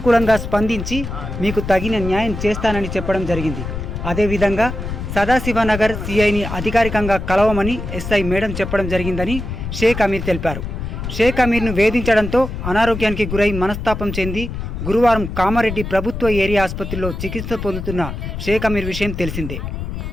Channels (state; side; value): noise; left; rumble, 6 dB below the sound